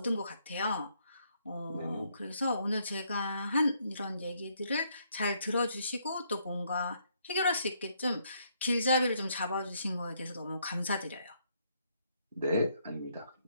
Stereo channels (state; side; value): inverted; both; correlation -0.72